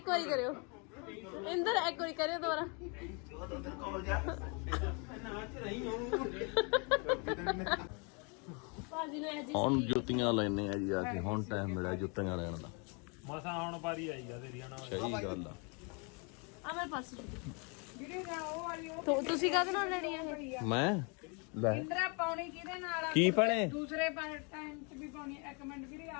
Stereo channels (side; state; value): right; quieter; 34.0 dB